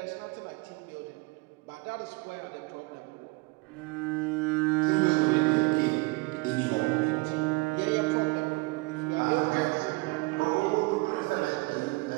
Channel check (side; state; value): left; quieter; 25.9 dB